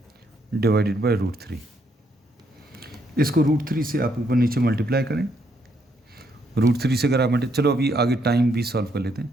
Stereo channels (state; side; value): normal; both; correlation 0.74